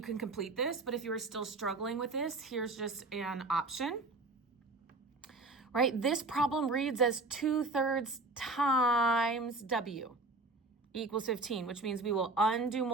can complete this, but if you are still struggling with this, here's just an option. Right, this problem reads as 2/3 times w equals 15, which means we will undo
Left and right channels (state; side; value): quieter; left; 3.2 dB